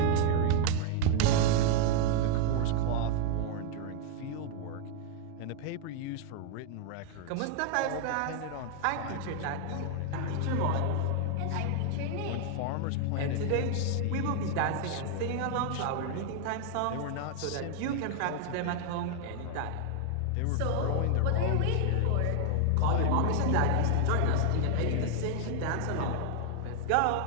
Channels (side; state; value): both; different; correlation 0.00